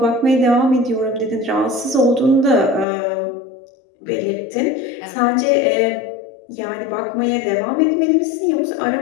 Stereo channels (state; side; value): drops out; right; at 2.9 s